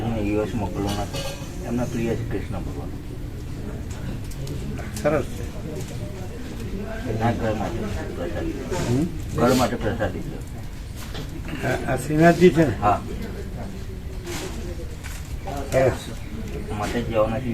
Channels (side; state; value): both; identical; correlation 1.00